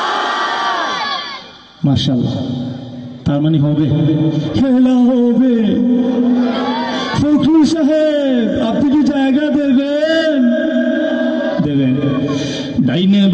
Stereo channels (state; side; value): identical; both; correlation 1.00